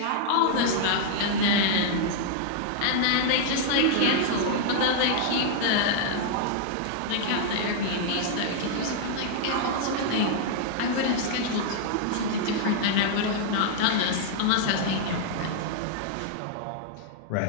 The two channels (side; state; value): both; different; correlation -0.01